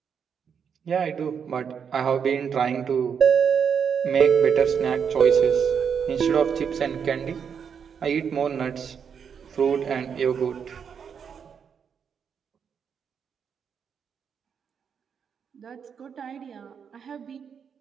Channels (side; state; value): left; quieter; 7.1 dB